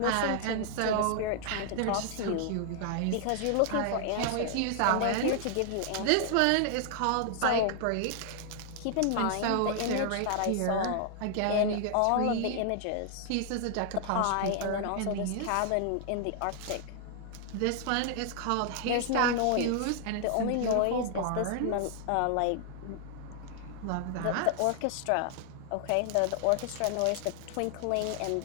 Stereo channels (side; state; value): both; different; correlation 0.00